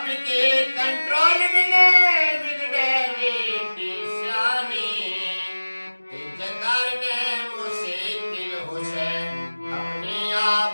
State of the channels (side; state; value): both; inverted; correlation -1.00